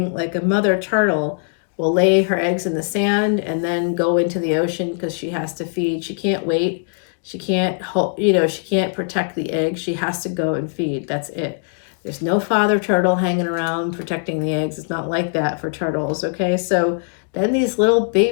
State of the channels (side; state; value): right; silent; digital silence